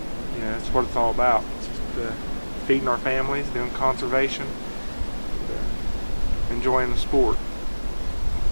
know, that's what it's all about. It's just feeding our families, doing conservation, enjoying the sport.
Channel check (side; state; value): both; inverted; correlation -1.00